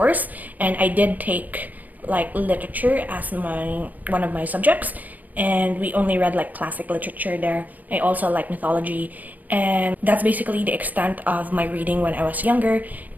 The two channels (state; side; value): late; left; 0.081 ms